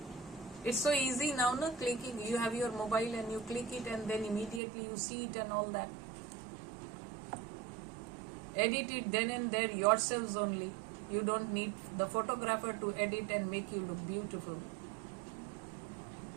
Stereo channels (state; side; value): drops out; left; at 4.6 s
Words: It's so easy now, no? Clicking, you have your mobile and you click it and then immediately you see it and all that. Edit it then and there yourselves only. You don't need the photographer to edit and make you look beautiful.